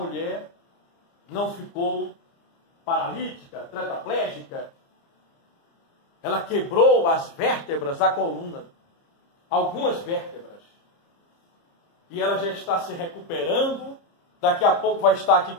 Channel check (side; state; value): right; late; 30 ms